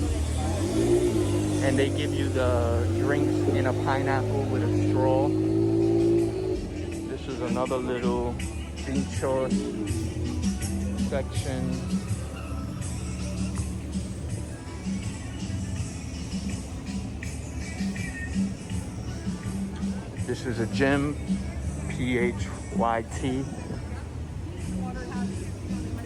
And they give you the drinks in a pineapple with a straw. This is another little pinchos section. This is a gym, PHYT.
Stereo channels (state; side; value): identical; both; correlation 1.00